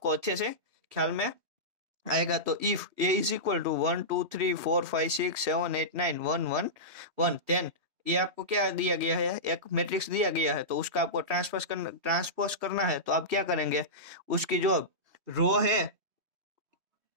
अच्छे से ख्याल में आएगा। तो if A is equal to 1 2 3 4 5 6 7 8 9 1 1 1 10, ये आपको क्या दिया गया है, एक मैट्रिक्स दिया गया है। तो उसका आपको ट्रांसपोज करना है। तो आप क्या करेंगे, उसकी जो रो है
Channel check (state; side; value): late; left; 3.2 ms